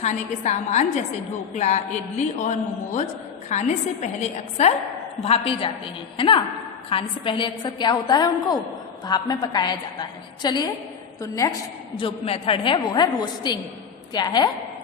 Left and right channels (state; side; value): quieter; right; 6.8 dB